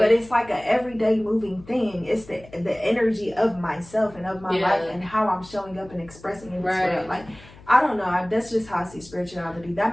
it's like an everyday moving thing. It's the energy of myself and of my life and how I'm showing up and expressing it. Like, I don't know. That's just how I see spirituality. That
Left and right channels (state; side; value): noise; left; hum, 22 dB below the sound